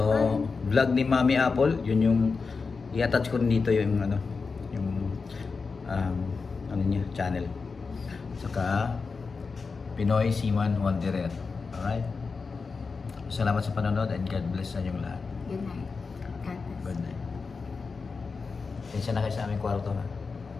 vlog ni Mami Apple, yun yung i-attach ko rin dito yung ano niya, channel. Saka Pinoy Seaman Wanderer. Alright? Salamat sa panonood and God bless sa inyong lahat. Good night. God bless. Good night. Tensya na kayo sa aming kwarto ha.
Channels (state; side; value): quieter; right; 4.7 dB